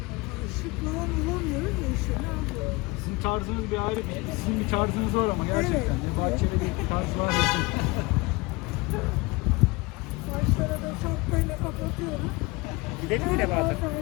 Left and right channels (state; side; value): quieter; right; 24.2 dB